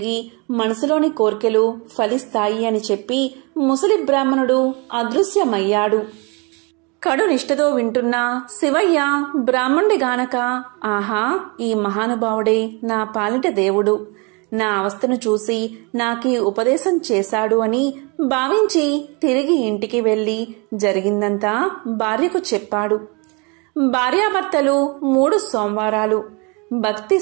మనసులోని కోర్కెలు ఫలిస్తాయి అని చెప్పి ముసలి బ్రాహ్మణుడు అదృశ్యమయ్యాడు. కడు నిష్ఠతో వింటున్న శివయ్య బ్రాహ్మణుడి గానక, ఆహా, ఈ మహానుభావుడే నా పాలిట దేవుడు, నా అవస్థను చూసి నాకీ ఉపదేశం చేశాడు అని భావించి తిరిగి ఇంటికి వెళ్లి జరిగిందంతా భార్యకు చెప్పాడు. భార్యాభర్తలు 3 సోమవారాలు భక్తి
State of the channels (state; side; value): quieter; left; 30.6 dB